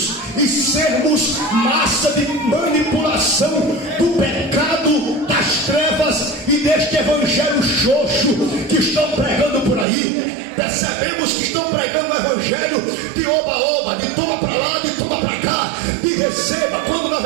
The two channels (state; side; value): drops out; left; at 9.9 s